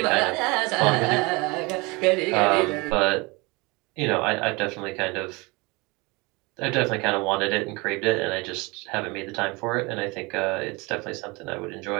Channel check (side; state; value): left; quieter; 25.8 dB